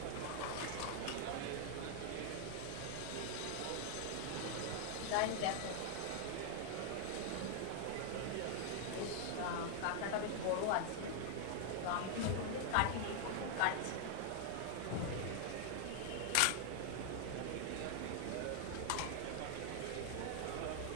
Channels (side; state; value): both; different; correlation 0.00